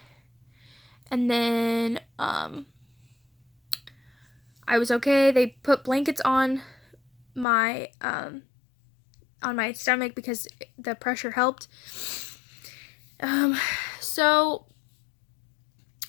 And then I was okay. They put blankets on my stomach because the pressure helped. So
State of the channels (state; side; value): drops out; right; at 7.5 s